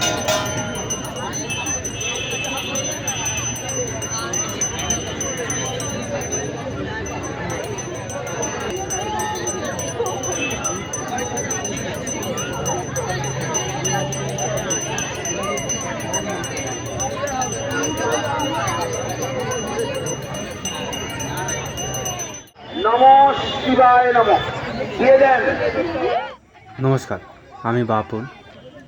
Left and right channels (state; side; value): identical; both; correlation 1.00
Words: শিবায় নমঃ দিয়ে দেন। নমস্কার, আমি বাপন।